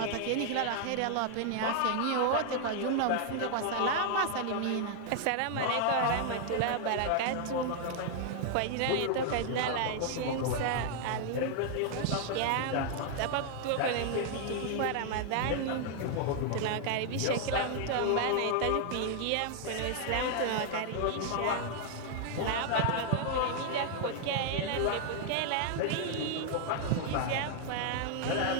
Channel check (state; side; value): different; both; correlation 0.00